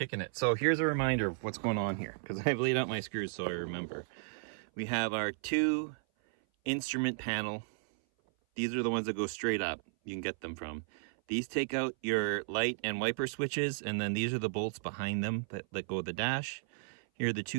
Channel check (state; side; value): silent; left; 55 dB below the other